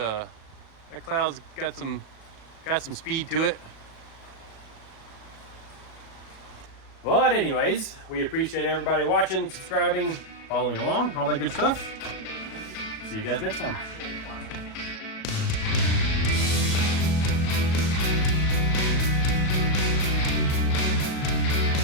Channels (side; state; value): right; late; 37 ms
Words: cloud's got some speed to it. But anyways, we appreciate everybody watching, subscribing, following along, all that good stuff. See you guys next time.